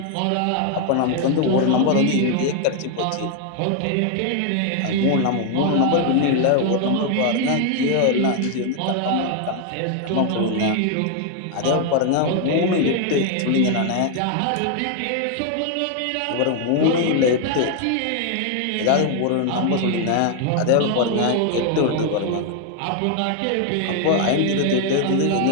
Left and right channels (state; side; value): different; both; correlation 0.00